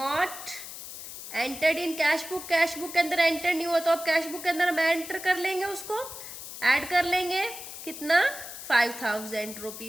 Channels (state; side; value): noise; left; hiss, 11 dB below the sound